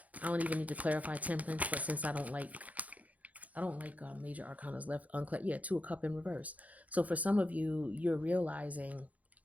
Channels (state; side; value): late; left; 0.073 ms